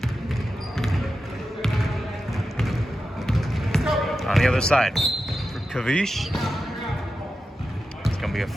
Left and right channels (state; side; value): normal; both; correlation 0.91